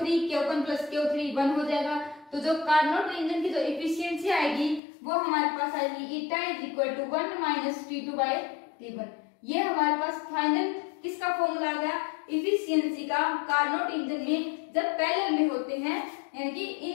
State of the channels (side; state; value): right; drops out; at 4.8 s